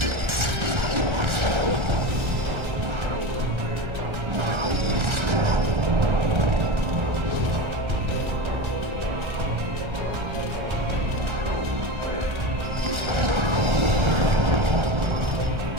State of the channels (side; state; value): left; late; 1.3 ms